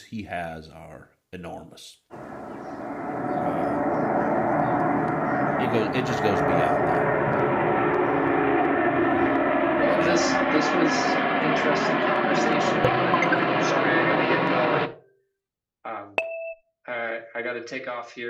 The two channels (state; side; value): identical; both; correlation 1.00